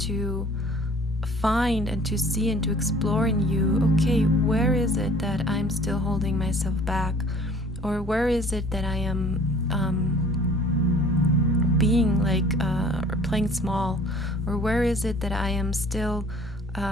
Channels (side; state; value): both; normal; correlation 0.51